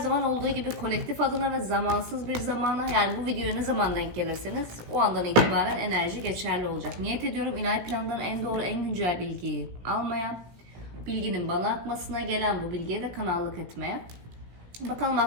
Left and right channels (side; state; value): left; late; 17 ms